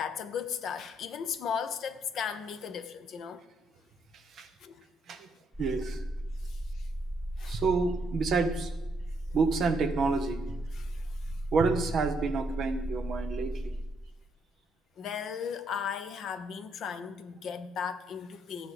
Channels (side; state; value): both; normal; correlation 0.74